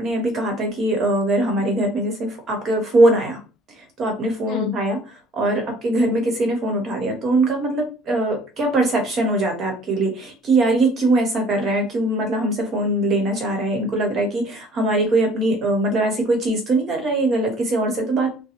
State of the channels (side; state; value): both; normal; correlation 0.55